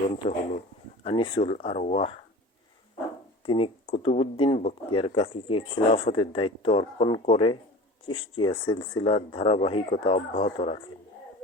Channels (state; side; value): normal; both; correlation 0.38